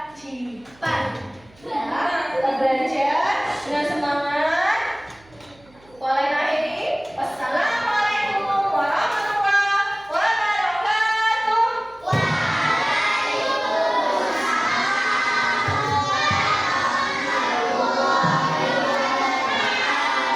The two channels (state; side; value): noise; right; hum, 28 dB below the sound